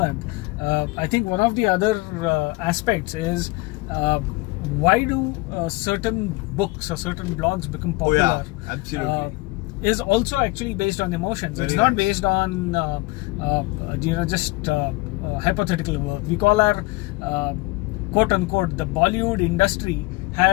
I think one of the other aspects is why do certain books or certain blogs become popular? Absolutely. Is also actually based on emotions. It's not based on just hypothetical work. We call our quote unquote the Bollywood industry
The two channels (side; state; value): right; quieter; 22.9 dB